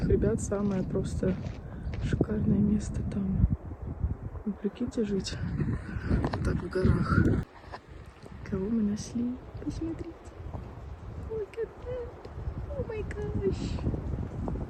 ребят самое просто шикарное место там. Вы прикиньте жить вот так в горах. Кого мы нашли? Посмотрите. Look at that. Oh my gosh.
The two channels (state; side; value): identical; both; correlation 1.00